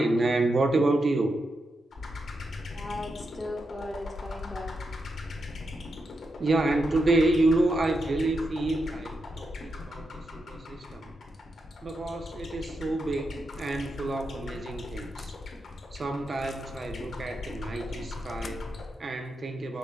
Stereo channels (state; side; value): normal; both; correlation 0.85